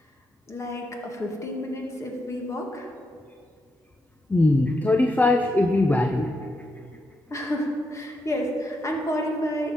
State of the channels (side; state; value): both; normal; correlation 0.83